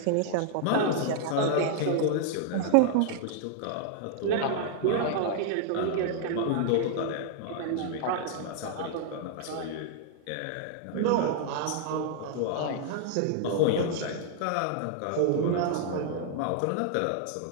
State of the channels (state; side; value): different; both; correlation 0.00